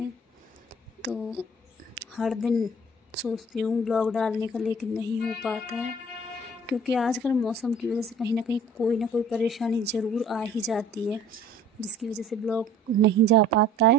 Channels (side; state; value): both; normal; correlation 0.50